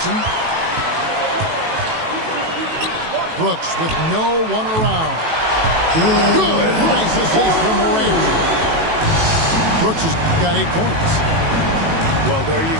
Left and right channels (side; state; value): left; late; 18 ms